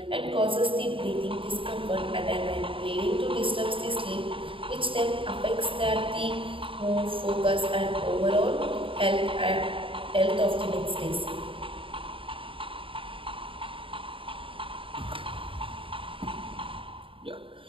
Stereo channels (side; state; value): left; late; 0.25 ms